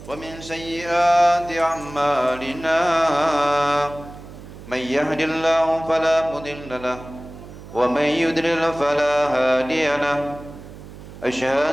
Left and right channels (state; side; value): noise; right; hum, 16 dB below the sound